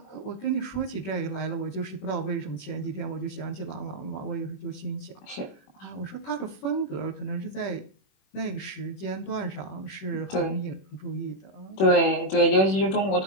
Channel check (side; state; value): right; late; 21 ms